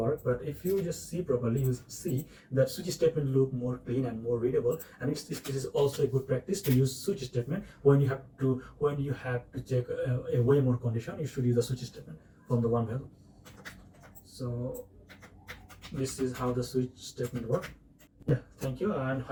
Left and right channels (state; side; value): identical; both; correlation 1.00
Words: but if you just see properly, you see that switch statement look more clean and more readable. And this is also a good practice to use switch statement when you have to check a way more condition. You should use the switch statement from the one value. So this is how the switch statement works. Yeah, thank you, and